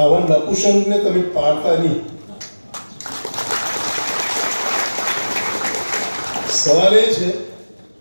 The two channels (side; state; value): both; inverted; correlation -1.00